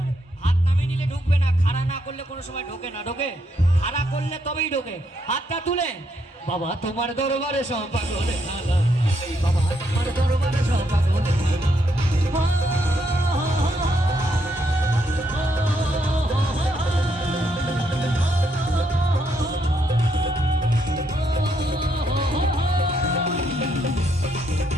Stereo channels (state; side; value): normal; both; correlation 0.76